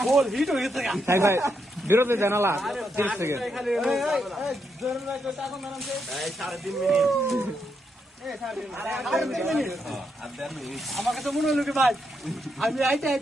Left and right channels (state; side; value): normal; both; correlation 0.80